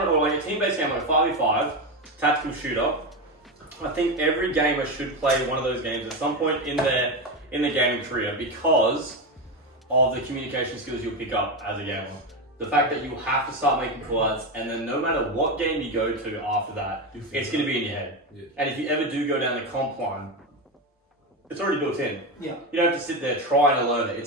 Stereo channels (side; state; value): both; normal; correlation 0.14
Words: or like a team-based game like 5v5, tactical shooter, I think every gamer should play one of those games at some point in their gaming career because of the communication skills you'll pick up as a gamer. The fact that you have to start making call-outs, and then no matter what game you go to after that, it's going to be in your head. Yeah. And if you ever do go down the comp line, it's already built in. Yeah. You don't have to sit there trying to learn it.